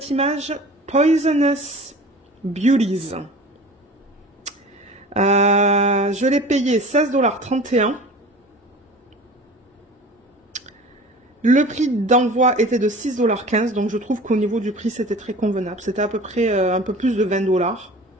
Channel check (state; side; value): normal; both; correlation 0.40